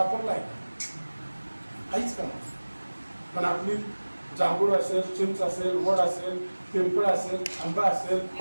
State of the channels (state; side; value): inverted; both; correlation -1.00